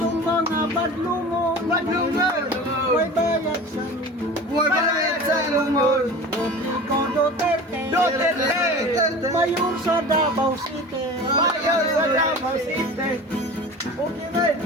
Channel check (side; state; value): both; normal; correlation 0.36